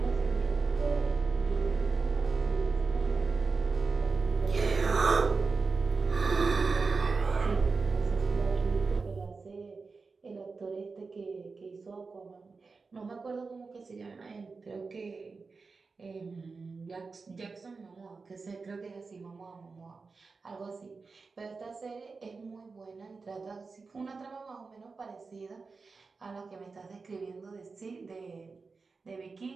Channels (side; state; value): left; quieter; 4.4 dB